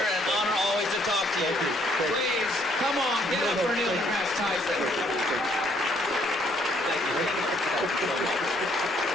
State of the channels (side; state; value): both; normal; correlation 0.66